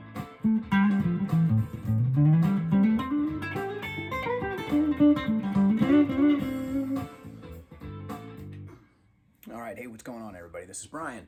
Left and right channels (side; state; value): both; identical; correlation 1.00